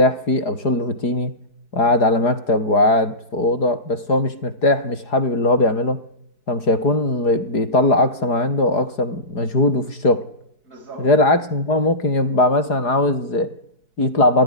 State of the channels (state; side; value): late; right; 4.9 ms